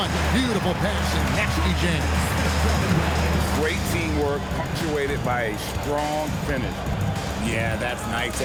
Beautiful pass and nasty jam. Great teamwork punctuated by a strong finish. Yeah, that's nice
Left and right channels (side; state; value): both; identical; correlation 1.00